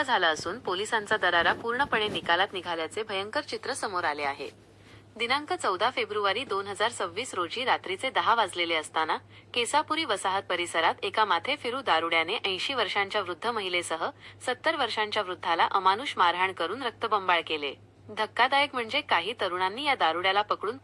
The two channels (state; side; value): identical; both; correlation 1.00